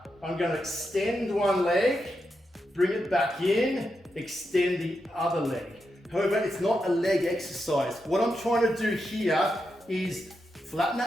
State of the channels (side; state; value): both; normal; correlation 0.86